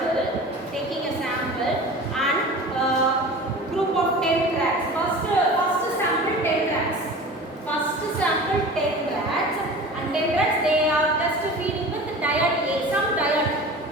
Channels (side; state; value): both; normal; correlation 0.37